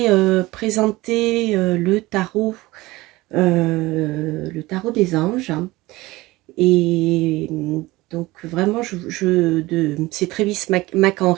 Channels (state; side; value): quieter; left; 19.9 dB